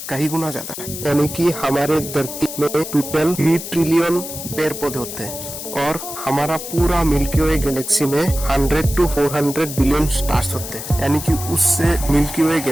कई गुना ज्यादा है। यानी कि हमारे धरती में टोटल 3 ट्रिलियन पेड़ पौधे होते हैं और हमारा पूरा मिल्की वे गैलेक्सी में 100 to 400 बिलियन स्टार्स होते हैं। यानी कि उससे मिल्की वे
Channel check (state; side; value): noise; left; hiss, 9 dB below the sound